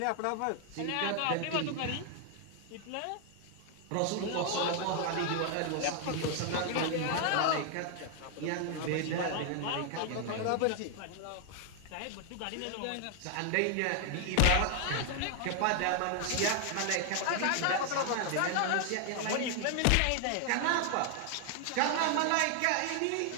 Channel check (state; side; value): different; both; correlation 0.00